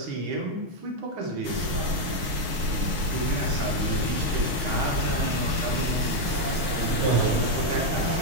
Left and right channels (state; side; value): late; left; 6.4 ms